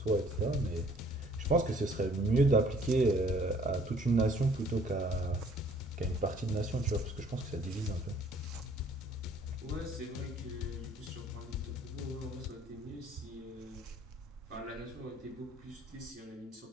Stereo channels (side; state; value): both; normal; correlation 0.58